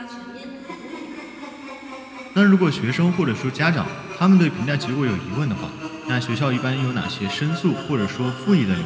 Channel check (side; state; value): both; identical; correlation 1.00